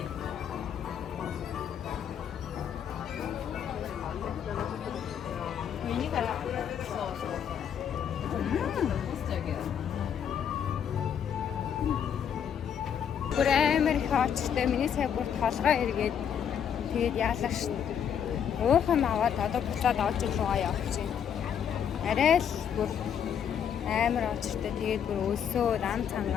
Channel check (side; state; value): right; quieter; 8.4 dB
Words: Бүр амар их очтой миний сая бүр толгой эргээд тэгээд яалаа шин. Уухан аваад одоо буцаад олж руугаа явчихъя. Арай л бүр амар очтой тэгээд бүр өлсөө рам